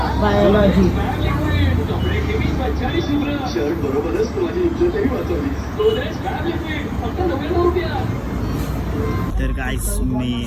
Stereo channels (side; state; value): both; identical; correlation 1.00